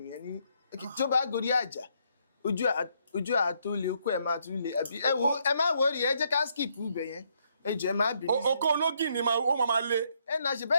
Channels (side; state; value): both; inverted; correlation -0.73